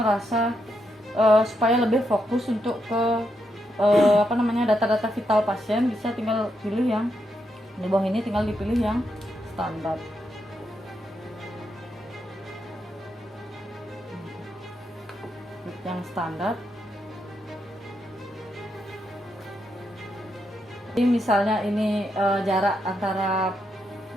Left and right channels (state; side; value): normal; both; correlation 0.81